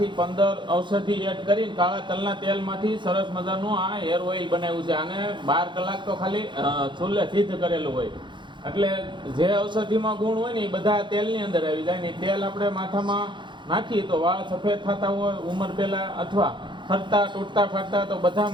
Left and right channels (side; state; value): left; late; 0.23 ms